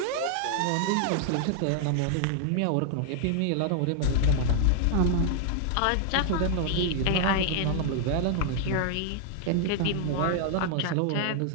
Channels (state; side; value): different; both; correlation 0.00